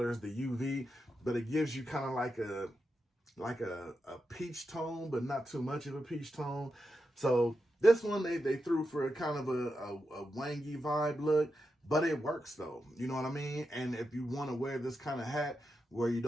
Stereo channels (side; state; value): both; normal; correlation 0.87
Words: as the UV, but it gives you kind of like a peach tone, but not too much of a peach tone. So this one they threw for a kind of a wangy vibe look, but it works though. You know what I mean? And if you want to wear this kind of hat where you